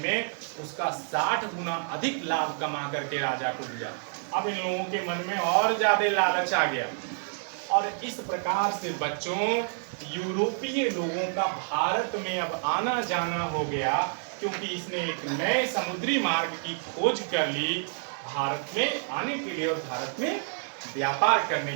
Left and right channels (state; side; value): silent; left; 59 dB below the other